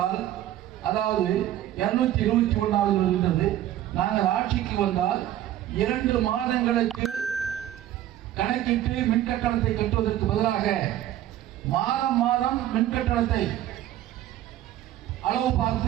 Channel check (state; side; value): quieter; left; 12.8 dB